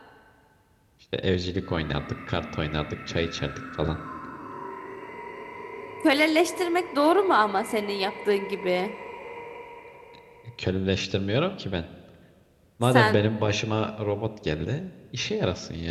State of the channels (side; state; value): both; identical; correlation 1.00